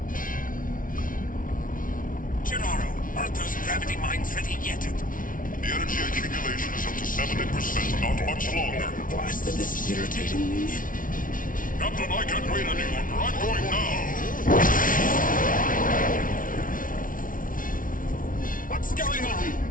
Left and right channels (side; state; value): right; late; 0.39 ms